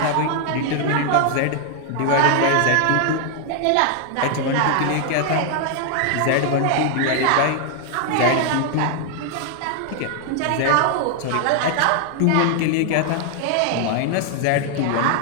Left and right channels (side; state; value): both; different; correlation 0.00